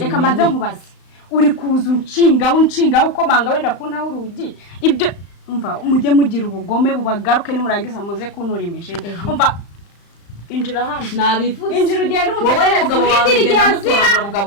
mbanze nkubaze uri kuza unshinga ukomanga wenda kuntaho urugi ibyo umva mujye mugira ubugome bubagaruke nimurangiza muze kuntura imijini umva injira hano nabivuze injira ugende umutegereze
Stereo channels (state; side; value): late; right; 35 ms